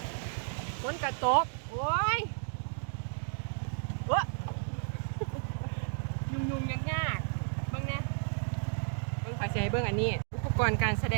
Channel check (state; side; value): silent; left; digital silence